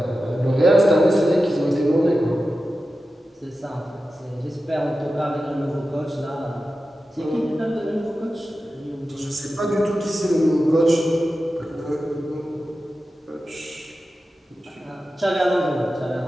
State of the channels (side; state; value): both; normal; correlation 0.93